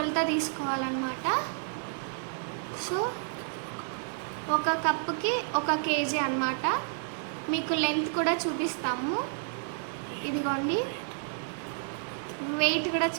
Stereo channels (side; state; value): left; silent; digital silence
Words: తీసుకోవాలన్నమాట. సో ఒక కప్పుకి 1 kg అనమాట. మీకు లెంత్ కూడా చూపిస్తాము. ఇదిగోండి, వెయిట్ కూడా